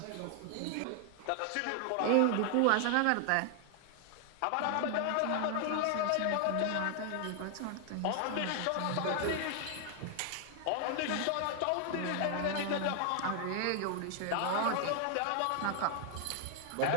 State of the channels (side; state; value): both; different; correlation 0.00